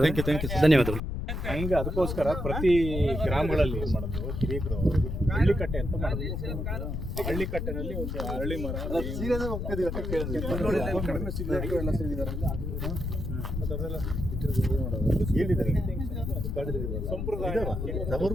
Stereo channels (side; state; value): left; noise; rumble, 3 dB below the sound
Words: ಧನ್ಯವಾದಗಳು. ಹಂಗೆ ಅದಕ್ಕೋಸ್ಕರ ಪ್ರತಿ ಗ್ರಾಮಗಳಲ್ಲಿ ಏನು ಮಾಡೋದು, ಹಿರಿಯರು ಹಳ್ಳಿಕಟ್ಟೆ ಅಂತ ಮಾಡೋದು. ಹಳ್ಳಿಕಟ್ಟೆನಲ್ಲಿ ಒಂದು ಅರಳಿ ಮರ